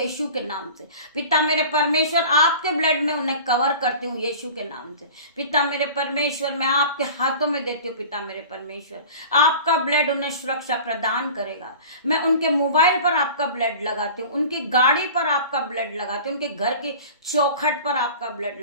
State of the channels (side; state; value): both; inverted; correlation -0.40